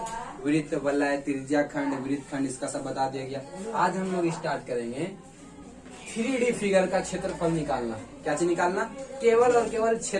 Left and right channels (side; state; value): both; identical; correlation 1.00